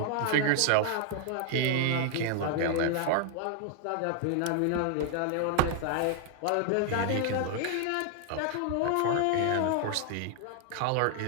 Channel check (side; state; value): both; different; correlation 0.00